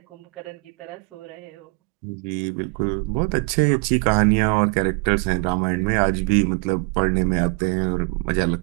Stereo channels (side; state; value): left; quieter; 30.8 dB